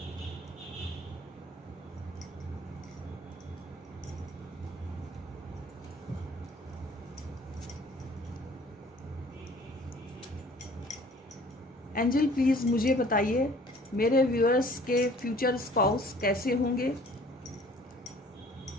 एंजल प्लीज मुझे बताइए मेरे व्यूअर्स के फ्यूचर स्पाउस कैसे होंगे,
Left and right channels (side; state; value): both; normal; correlation 0.53